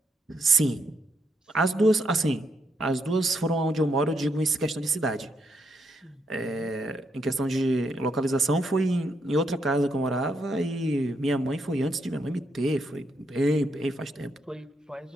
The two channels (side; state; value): both; normal; correlation 0.77